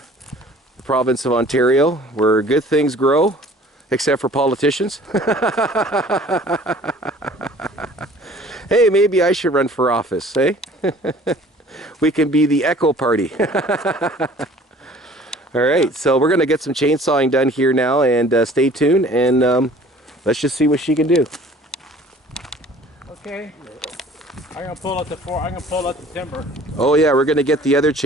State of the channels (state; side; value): normal; both; correlation 0.50